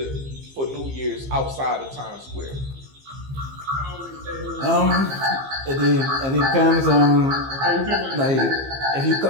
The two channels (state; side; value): late; left; 15 ms